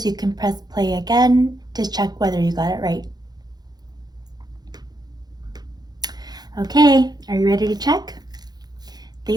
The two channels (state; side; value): late; left; 0.19 ms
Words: you can press play again to check whether you got it right. Okay, are you ready to check?